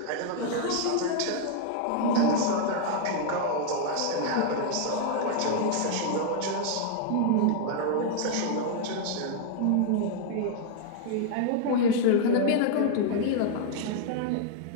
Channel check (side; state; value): both; different; correlation 0.00